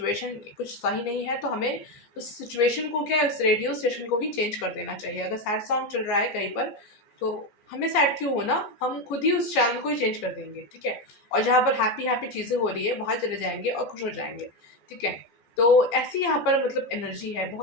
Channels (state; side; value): late; right; 14 ms